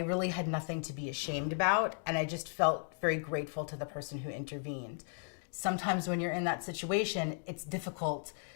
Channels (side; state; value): right; silent; 54 dB below the other